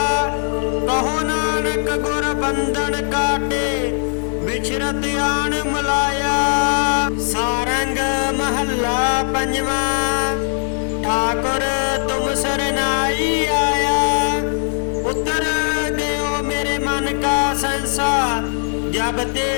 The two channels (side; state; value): right; silent; digital silence